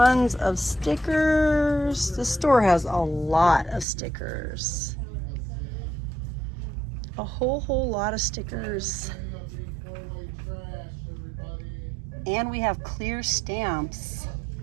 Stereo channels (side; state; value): left; drops out; at 3.9 s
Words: of stickers. The store has a lot of stickers. A whole lot of stickers. And we have clear stamps.